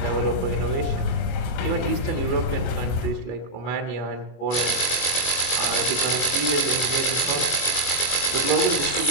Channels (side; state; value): right; late; 20 ms